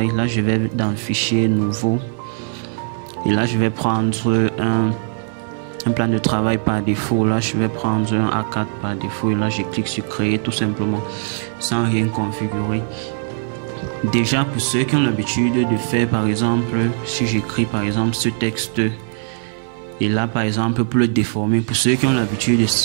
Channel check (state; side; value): silent; left; 56 dB below the other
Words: Là, je vais dans Fichier, Nouveau. Et là, je vais prendre un plan de travail par défaut. Là, je vais prendre un A4 par défaut. Et là, je clique sur Créer tout simplement sans rien configurer. Déjà, pour ceux qui ont l'habitude de faire, par exemple, si j'écris par exemple ce texte et là par exemple pour le déformer, pour ceux qui ont l'habitude